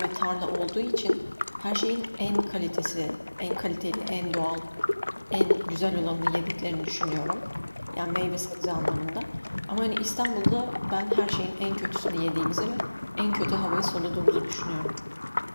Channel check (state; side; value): inverted; both; correlation -1.00